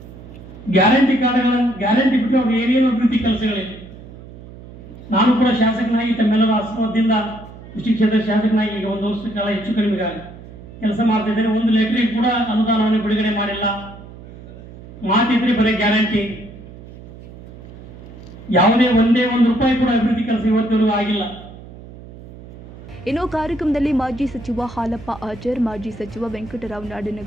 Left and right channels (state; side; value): noise; right; hum, 17 dB below the sound